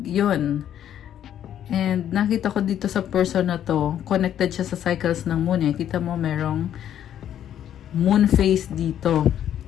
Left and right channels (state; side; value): quieter; right; 10.4 dB